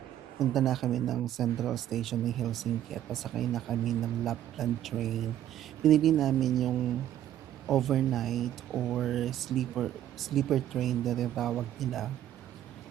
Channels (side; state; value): left; quieter; 11.7 dB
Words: punta na kami ng Central Station ng Helsinki at pasakay na kami ng Lapland train. Pinili namin yung overnight or sleeper train na tinatawag nila.